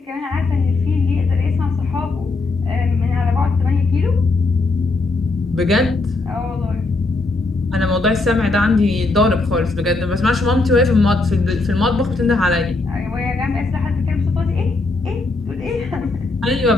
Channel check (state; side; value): quieter; right; 3.3 dB